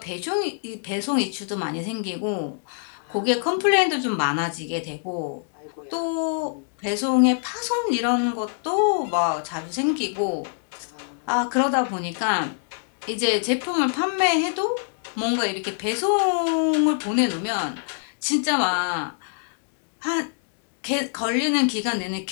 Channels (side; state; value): right; silent; digital silence